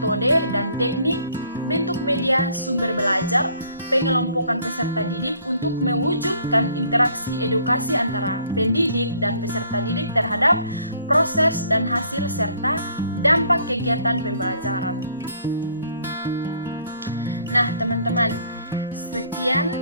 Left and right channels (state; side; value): inverted; both; correlation -0.61